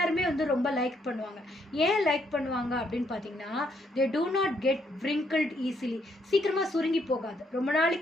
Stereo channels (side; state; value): both; normal; correlation 0.73